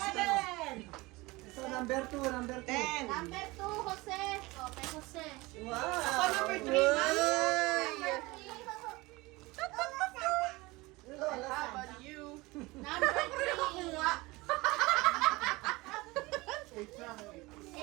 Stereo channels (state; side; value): quieter; left; 22.1 dB